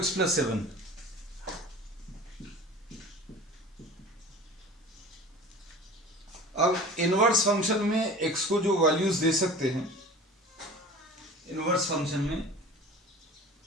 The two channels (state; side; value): normal; both; correlation 0.39